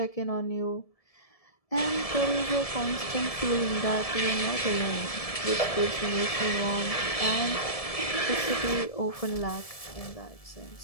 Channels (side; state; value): right; late; 1.7 ms